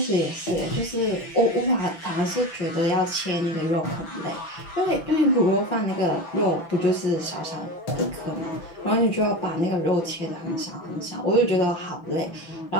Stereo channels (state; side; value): late; right; 6.0 ms